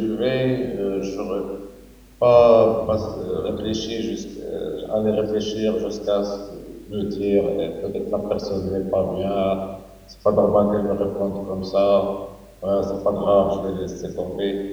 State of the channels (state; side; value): identical; both; correlation 1.00